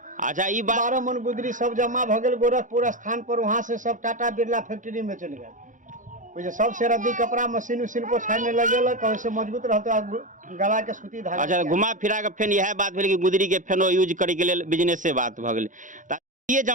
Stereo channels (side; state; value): left; late; 0.37 ms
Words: अच्छा, ई बात 12 मन गुदरी सब जमा भ गेल गोरखपुर स्थान पर। वहाँ से सब टाटा बिरला फैक्ट्री में चल गए। सब से रद्दी कपड़ा मशीन उशीन पर छाड़ने लगेलक, वैसे मजबूत रहते गला के सूती धागा। अच्छा, घुमा फिरा के फेन यह बात भेल कि गुदरी के फेनो यूज करे के लिए बिजनेस से बात भ गेल। ये